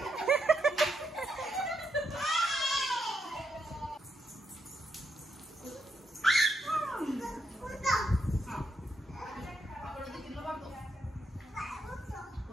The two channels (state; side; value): normal; both; correlation 0.79